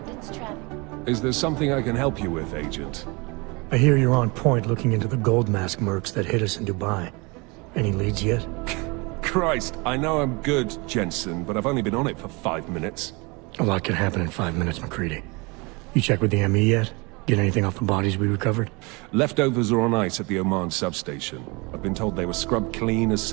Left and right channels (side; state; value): left; quieter; 27.7 dB